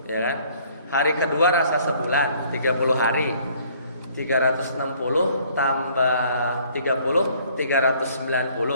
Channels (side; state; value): both; inverted; correlation -0.59